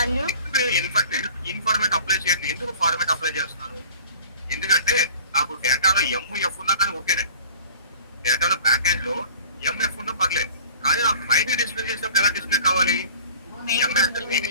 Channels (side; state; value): both; inverted; correlation -0.46